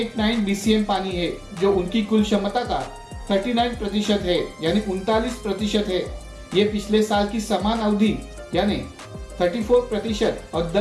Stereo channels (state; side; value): identical; both; correlation 1.00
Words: BCM पानी है, जो उनकी कुल क्षमता का 39% है, यानी 39% है। ये पिछले साल की समान अवधि यानी 34% और